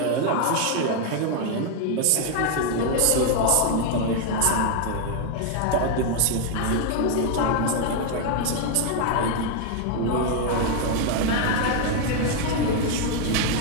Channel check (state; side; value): different; both; correlation 0.00